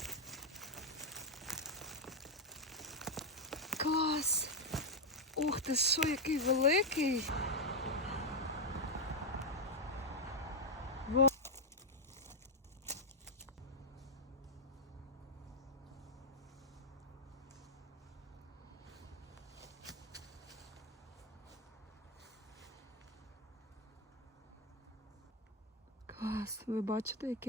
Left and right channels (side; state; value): both; normal; correlation 0.01